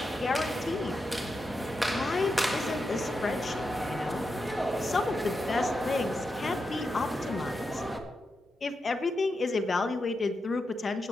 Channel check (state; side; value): normal; both; correlation 0.87